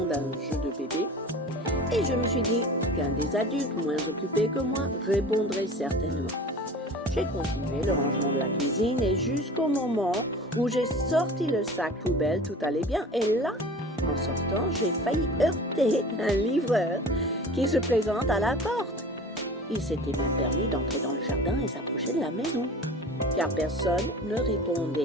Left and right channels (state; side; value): normal; both; correlation 0.39